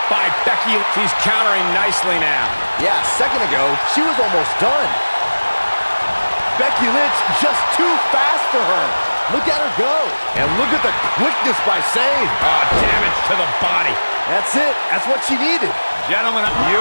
by Becky. She's countering nicely now. Yeah, a second ago, she was almost done. Becky Lynch just too fast for her. Look at her go. And look at the quickness by Sane. Oh, damage to the body. That's it. That's what she needed. Gentlemen,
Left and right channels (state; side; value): inverted; both; correlation -1.00